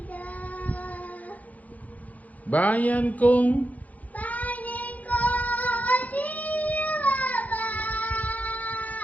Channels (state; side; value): late; right; 0.076 ms